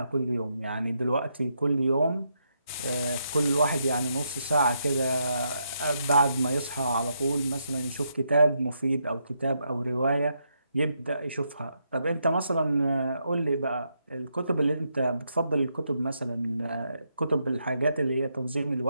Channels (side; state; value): both; inverted; correlation -0.80